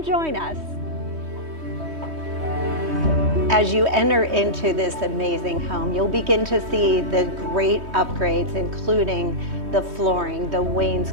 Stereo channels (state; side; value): late; left; 3.2 ms